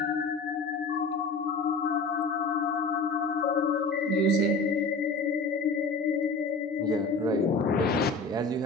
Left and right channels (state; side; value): quieter; right; 3.5 dB